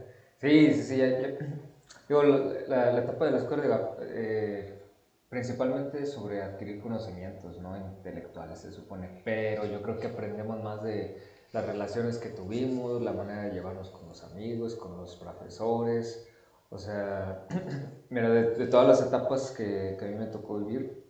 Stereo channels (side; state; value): both; identical; correlation 1.00